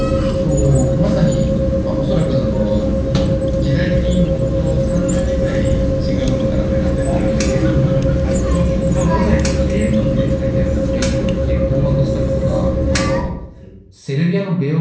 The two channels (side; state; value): both; identical; correlation 1.00